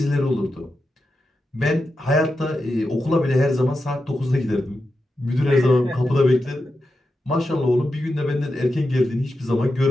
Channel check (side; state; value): both; normal; correlation 0.89